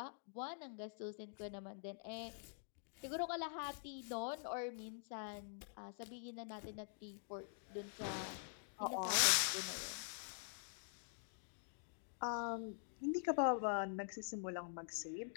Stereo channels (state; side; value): silent; right; digital silence